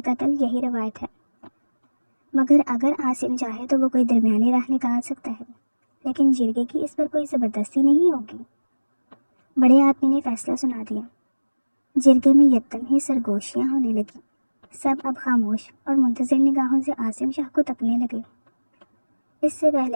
قتل یہی روایت ہے۔ مگر اگر عاصم چاہے تو وہ کوئی درمیانی راہ نکال سکتا ہے، لیکن جرگے کی اس پر کوئی زبردستی نہیں ہوگی۔ بڑے آدمی نے فیصلہ سنا دیا۔ جرگے میں یکدم ہی سرگوشیاں ہونے لگی. سب اب خاموش اور منتظر نگاہوں سے عاصم شاہ کو تکنے لگے. اس سے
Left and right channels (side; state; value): both; inverted; correlation -1.00